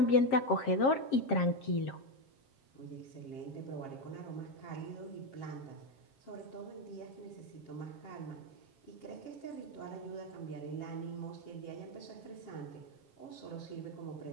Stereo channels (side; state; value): right; late; 7.5 ms